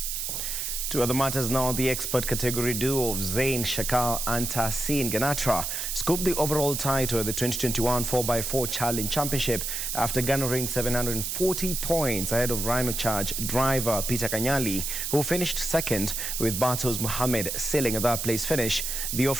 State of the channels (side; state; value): right; noise; hiss, 3 dB below the sound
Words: To other matters now, the expert category duo of Zain Shakal and Tahsin Ganatra scooped the overall title at the 2021 4x4 Challenge Championship after garnering 740 points ahead of Rhino Charge driver Peter Kanyali, who finished second, with Batos Mohammed sealing a third-place finish. The